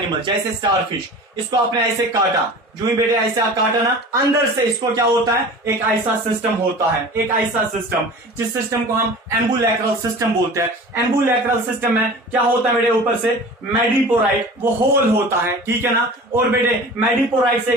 जैसे स्टारफिश, इसको आपने ऐसे काटा, जो ही बेटे ऐसा काटा ना, अंदर से इसको क्या होता है, एक ऐसा सिस्टम होता है, एक ऐसा सिस्टम जिस सिस्टम को हम एम्बुलैक्रल सिस्टम बोलते हैं। एम्बुलैक्रल सिस्टम में क्या होता है बेटे, ऊपर से मैडिपोराइट वो होल होता है, ठीक है ना। और बेटे मैडिपोराइट से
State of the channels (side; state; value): both; normal; correlation 0.39